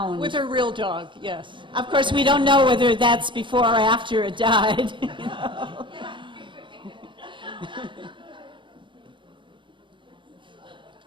With her real dog, yes. Of course, we don't know whether that's before or after it died. You know?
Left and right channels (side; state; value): left; late; 0.24 ms